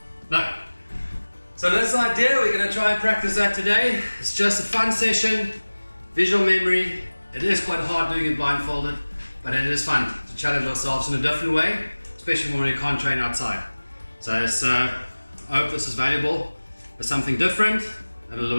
No. So that's the idea. We're going to try and practice that today. It's just a fun session, visual memory. It is quite hard doing it blindfolded, but it is fun to challenge ourselves in a different way, especially when we can't train outside. So I hope this is valuable. It's something different and a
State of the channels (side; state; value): both; inverted; correlation -1.00